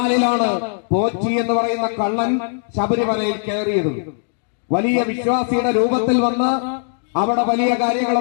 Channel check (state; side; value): silent; right; digital silence